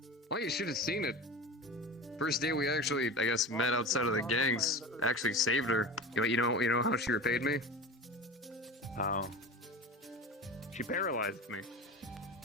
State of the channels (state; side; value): normal; both; correlation 0.31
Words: Well, you should have seen it. First day we actually, I guess, met outside of the gangs. Actually saved her. You know how she repaid me? How? She paralyzed me.